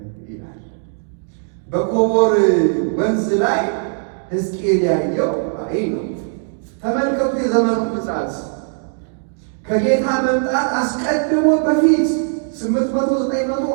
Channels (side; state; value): left; silent; digital silence